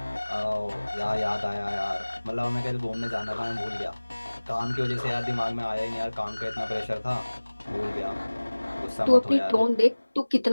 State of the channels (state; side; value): inverted; both; correlation -1.00